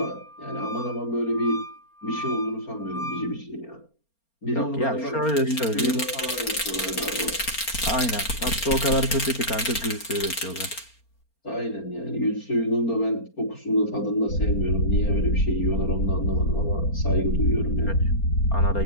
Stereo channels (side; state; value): right; late; 4.3 ms